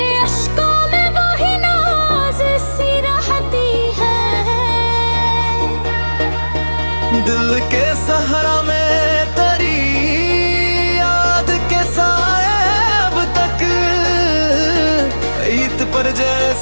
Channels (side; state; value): both; inverted; correlation -1.00